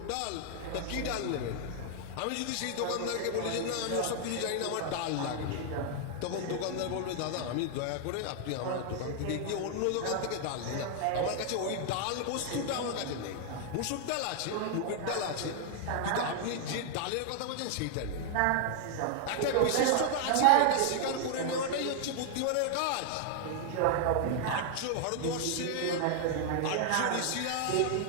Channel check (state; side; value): different; both; correlation 0.00